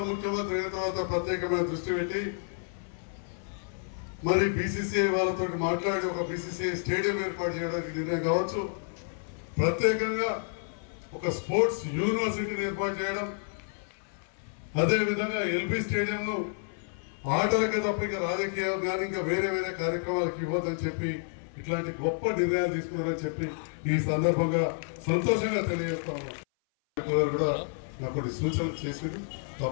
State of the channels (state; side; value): silent; right; 56 dB below the other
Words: ముఖ్యమంత్రి అయిన తర్వాత ప్రత్యేకమైన దృష్టి పెట్టి మరి బీసీసీఐ వాళ్ళతో మాట్లాడి ఒక బీసీసీఐ స్టేడియం ఏర్పాటు చేయడానికి నిర్ణయం కావచ్చు, ప్రత్యేకంగా ఒక స్పోర్ట్స్ యూనివర్సిటీని ఏర్పాటు చేయడం, అదేవిధంగా ఎల్బీ స్టేడియంను ఆటలకే తప్ప ఇంకా రాజకీయం కానీ ఇంకా వేరే కార్యక్రమాలకు ఇవ్వద్దని చెప్పి ఇట్లాంటి గొప్ప నిర్ణయాలు తీసుకున్నారని చెప్పి ఈ సందర్భంగా సంతోషంగా తెలియజేస్తాము. కూడా నాకు కొన్ని సూచనలు చేసింది,